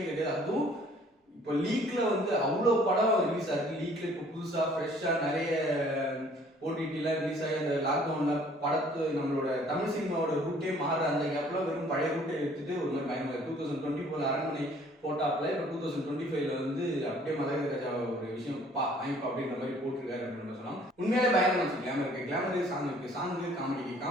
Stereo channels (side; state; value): both; normal; correlation 0.57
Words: கிடையாது. அதுவும் இப்போ லீக்ல வந்து அவ்வளோ படம் ரிலீஸ் ஆயிருக்கு. லீக்ல இப்போ புதுசா ஃப்ரெஷ்ஷா நிறைய ஓடிடிலாம் ரிலீஸ் ஆகி அந்த லாக்டவுன்ல படத்து நம்மளோட தமிழ் சினிமாவோட ரூட்டே மாற அந்த கேப்ல வெறும் பழைய ரூட்டை எடுத்துட்டு ஒரு மாதிரி பயங்கர 2024 அரண்மனை போட்டாப்ல இப்போ 2025ல வந்து அப்படியே மதகஜ ராஜா ஒரு விஷயம் வாங்கிப்பா அப்படின்ற மாதிரி போட்டிருக்காரு அப்படின்னு சொல்லலாம். உண்மையிலே பயங்கரமா இருந்துச்சு. கிளாமர் சாங் இருக்கு,